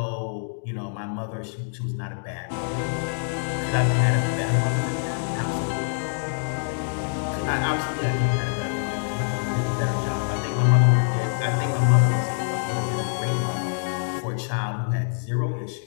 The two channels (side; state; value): right; silent; digital silence